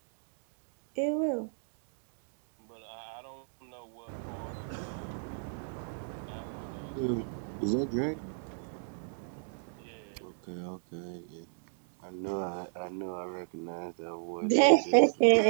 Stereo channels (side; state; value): left; silent; digital silence